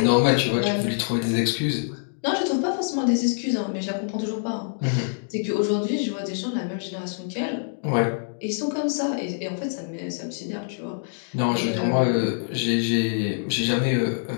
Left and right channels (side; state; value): right; silent; digital silence